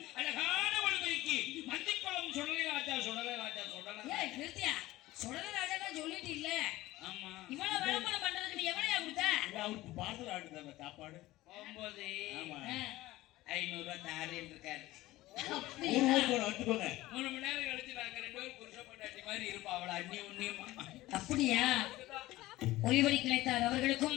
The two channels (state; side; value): quieter; right; 17.4 dB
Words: அழகான ஒளிபதிக்கு மந்திக்குளம் சுடலை ராஜா சொல்லிட்டு இல்ல. ஆமா, இவ்வளவு விளம்பரம் பண்றதுக்கு எவ்வளவு கொடுத்த? அவருக்கு பார்சல் ஆடுது சாப்பாடு 500 ரூபாய் தாரேன் இருக்காரு. 3 மணி நேரம் கழிச்சு நாங்க 2 பேரும் புருஷ பொண்டாட்டி மாதிரி இருப்போம். அவளை அண்ணி உண்ணியமா. அப்படியா? ஒளிவரி கிளைத்தார் அவர்களுக்கும்